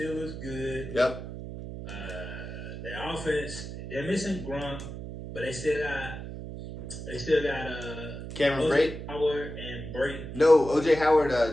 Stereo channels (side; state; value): right; noise; hum, 9 dB below the sound